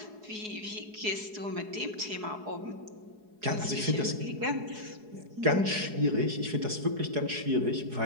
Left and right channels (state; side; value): late; left; 4.7 ms